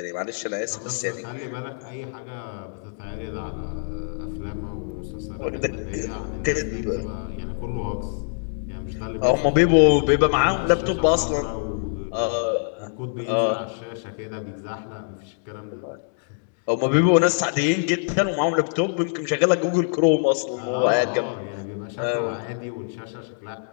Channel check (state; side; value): silent; right; 62 dB below the other